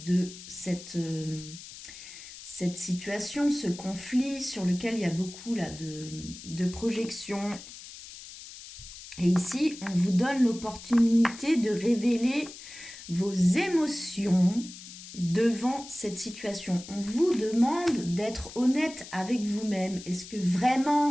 cette situation, ce conflit sur lequel il y a beaucoup là, de projections. Et ici, on vous donne l'opportunité de révéler vos émotions devant cette situation. On vous demande d'être honnête avec vous-même. Est-ce que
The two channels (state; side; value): noise; left; hiss, 15 dB below the sound